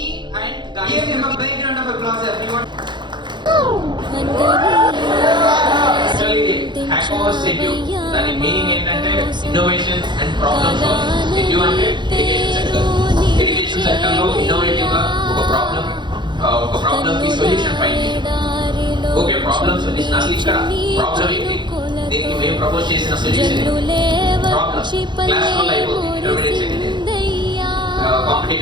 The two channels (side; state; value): left; late; 0.22 ms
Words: and guys. Give him a big round of applause, everyone. Actually, Hackerverse Edu, దాని meaning ఏంటంటే innovation and problem solving. ఎడ్యు అంటే education sector. Education sector లో innovative గా ఒక problem కి solution find చేయడం. Okay, problem solution అసలు ఇక్కడ ప్రాబ్లం ఏంటి, దీనికి మేము ప్రపోజ్ చేసిన సొల్యూషన్ ప్రాబ్లం క్లాస్ వల్ల అయిపోతుంది. Intermediate second year